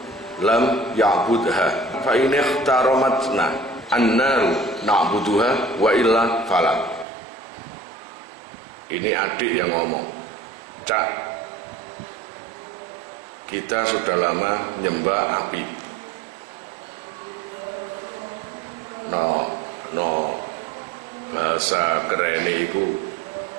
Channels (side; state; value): left; drops out; at 7.1 s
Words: lam ya'budha fa in ikhtaramatna annaru na'buduha wa illa fala. Ini adik yang ngomong. Cak, kita sudah lama nyembah api. No bahasa kerene iku